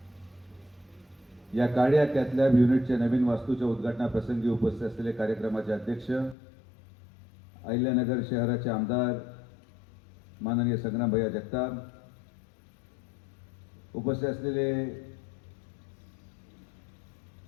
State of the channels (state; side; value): drops out; right; at 6.4 s